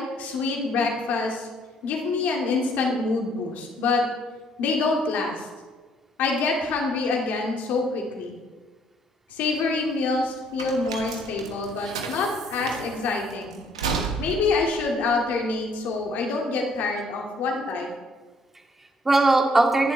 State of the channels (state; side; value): normal; both; correlation 0.65